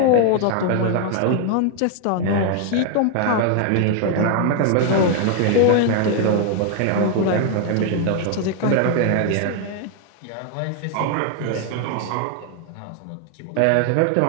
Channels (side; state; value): both; different; correlation 0.00